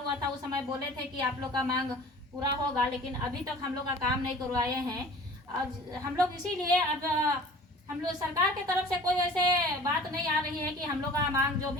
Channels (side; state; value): both; normal; correlation 0.45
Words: था उस समय बोले थे कि आप लोग का मांग पूरा होगा, लेकिन अभी तक हम लोग का काम नहीं करवाए हैं। और हम लोग इसीलिए अब हम लोग सरकार के तरफ से कोई वैसे बात नहीं आ रही है कि हम लोग का मांग जो